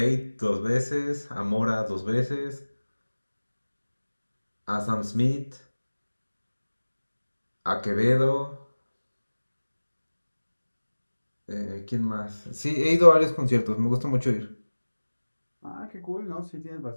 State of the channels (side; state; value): both; inverted; correlation -1.00